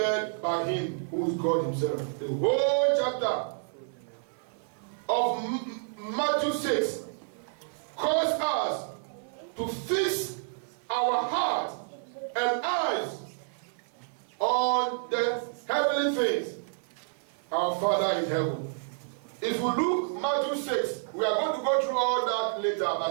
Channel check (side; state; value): left; silent; 58 dB below the other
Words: by Him who is God Himself. The whole chapter of Matthew 6 calls us to fix our heart and eyes on the heavenly things. Our Father in heaven. If we look Matthew 6, we are going to go through all that later, but